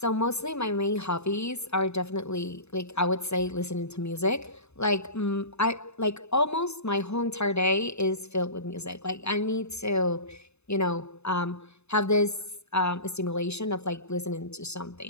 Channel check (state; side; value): late; right; 0.80 ms